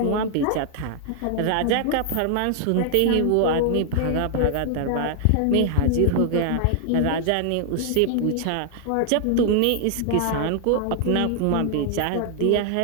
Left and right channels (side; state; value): both; different; correlation 0.00